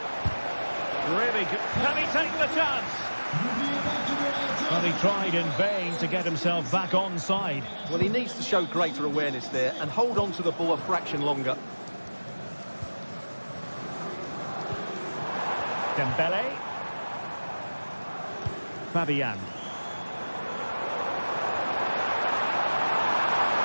Really good. Can he take the chance? Well, he tried in vain to get himself back onside. Well, he needs to show greater awareness there and hold on to the ball a fraction longer. Dembele. Fabian.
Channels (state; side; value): inverted; both; correlation -1.00